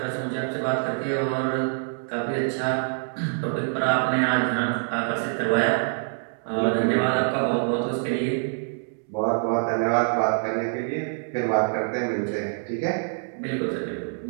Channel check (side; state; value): left; silent; digital silence